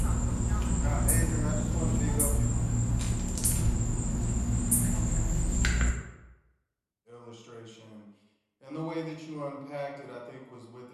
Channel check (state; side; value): identical; both; correlation 1.00